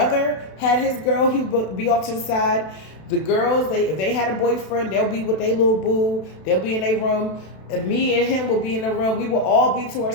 had his girl. He would be off to the side. The girls, if they had a boyfriend, they'll be with their little boo. They'll be in their room. And me and him will be in the room. We will all be to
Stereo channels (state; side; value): late; right; 32 ms